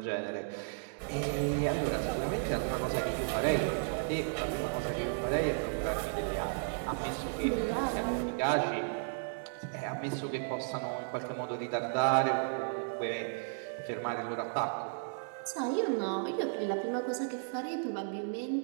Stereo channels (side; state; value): left; silent; digital silence